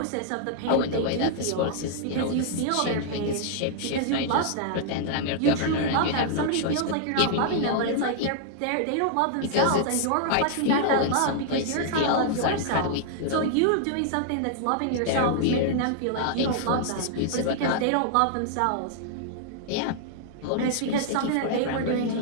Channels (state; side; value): different; both; correlation -0.01